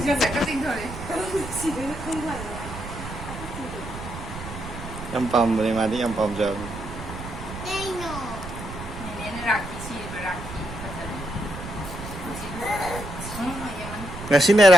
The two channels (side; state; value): right; noise; rumble, 10 dB below the sound